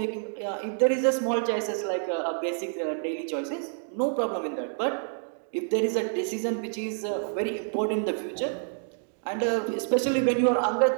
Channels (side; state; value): left; silent; digital silence